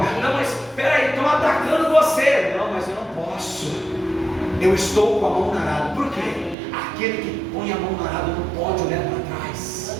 Não, mas peraí, estão atacando você. Não, mas eu não posso. Eu estou com a mão na arada. Por quê? Aquele que põe a mão na arada não pode olhar para trás.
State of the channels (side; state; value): left; drops out; at 6.6 s